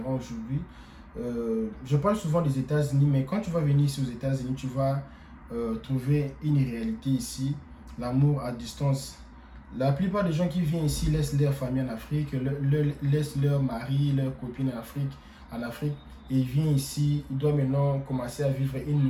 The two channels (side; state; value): both; identical; correlation 1.00